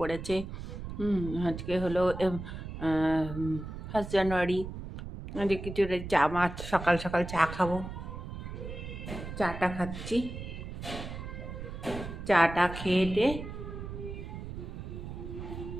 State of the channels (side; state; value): right; noise; rumble, 8 dB below the sound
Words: আজকে হলো 1 জানুয়ারি। আজকে কিছু চা মাছ, সকাল সকাল চা খাবো। চাটা খাচ্ছি। চাটা খেয়ে